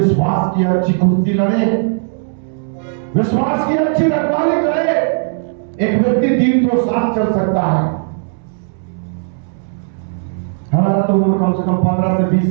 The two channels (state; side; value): silent; left; 69 dB below the other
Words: की अच्छी कुश्ती लड़े, विश्वास की अच्छी रखवाली करे। एक व्यक्ति 300 साल चल सकता है। हमारा तो उम्र कम से कम 15 से 20